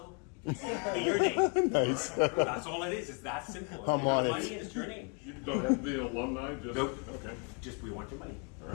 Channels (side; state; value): right; quieter; 36.5 dB